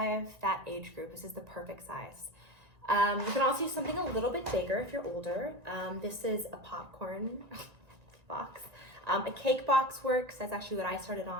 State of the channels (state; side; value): late; left; 1.9 ms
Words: that age group. This is the perfect size. You can also use something a little bit bigger if you're older. This is a popcorn box. A cake box works. That's actually what I started